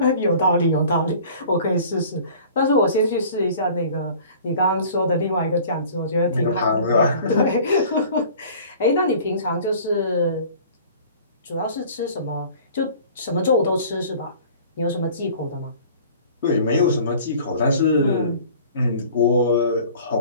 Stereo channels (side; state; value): both; inverted; correlation -0.47